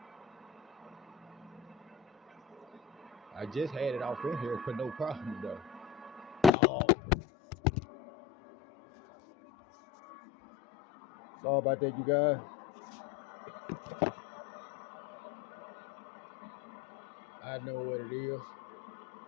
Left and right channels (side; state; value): right; drops out; at 6.5 s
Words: I just had it off in here for no problem though. Oh. Sorry about that, you guys. I know what it is.